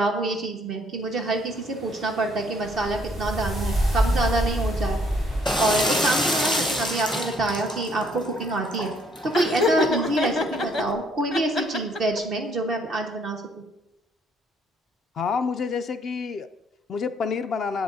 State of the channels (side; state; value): both; normal; correlation 0.65